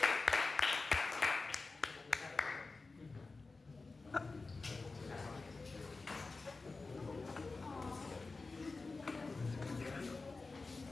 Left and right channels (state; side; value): quieter; right; 3.8 dB